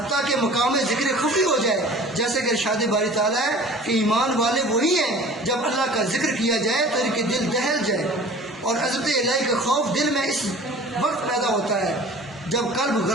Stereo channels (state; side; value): normal; both; correlation 0.44